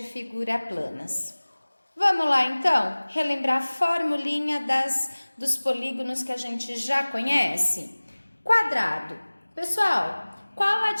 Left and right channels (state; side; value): inverted; both; correlation -1.00